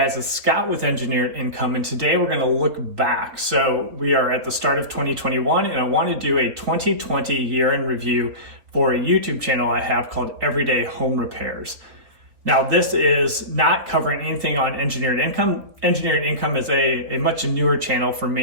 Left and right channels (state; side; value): late; left; 3.6 ms